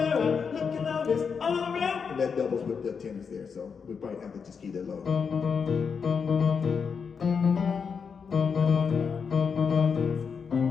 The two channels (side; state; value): right; quieter; 6.0 dB